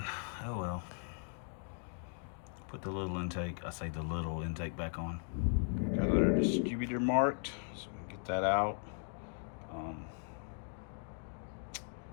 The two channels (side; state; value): right; silent; 52 dB below the other